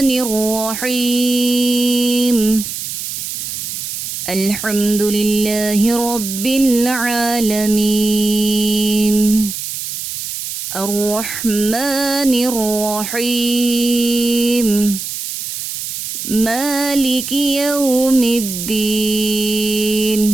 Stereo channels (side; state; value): right; noise; hiss, 6 dB below the sound